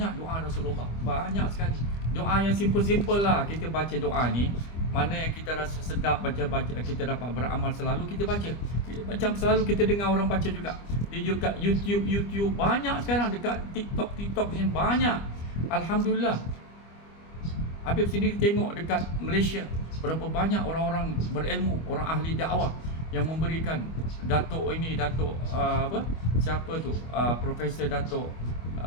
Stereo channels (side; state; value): right; late; 25 ms